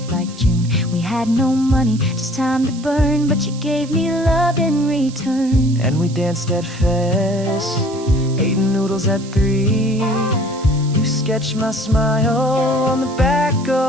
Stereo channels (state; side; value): noise; right; hiss, 18 dB below the sound